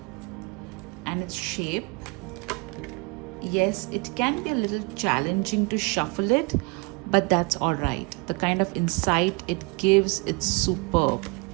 and its shape. Yes, it can be a little challenging to shuffle it, but that's all right. The kind of insight it gives, it's superb.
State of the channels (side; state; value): left; quieter; 29.5 dB